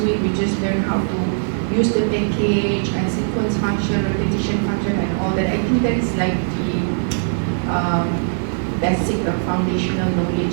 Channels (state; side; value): silent; left; 66 dB below the other